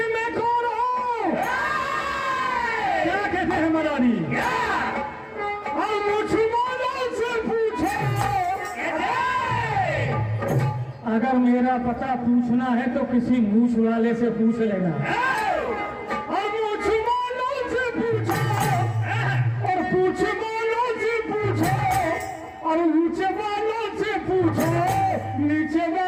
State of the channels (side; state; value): both; identical; correlation 1.00